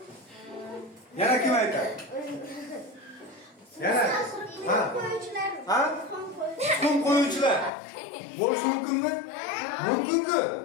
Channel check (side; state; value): right; drops out; at 7.7 s